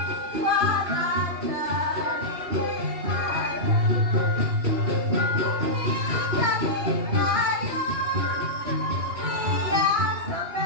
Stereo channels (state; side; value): late; left; 2.7 ms